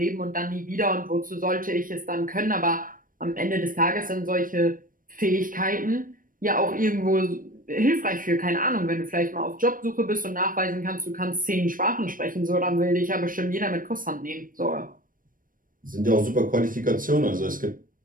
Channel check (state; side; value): late; left; 0.40 ms